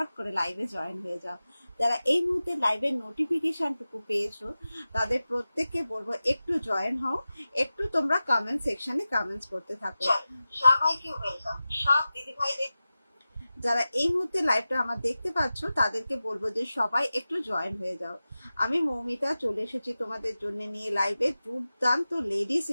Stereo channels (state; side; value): inverted; both; correlation -0.95